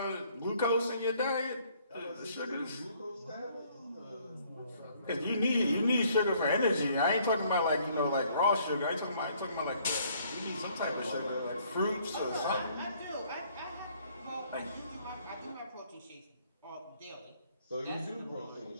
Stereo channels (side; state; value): both; inverted; correlation -0.63